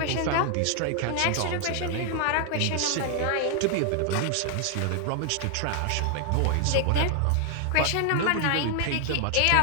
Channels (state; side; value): different; both; correlation 0.00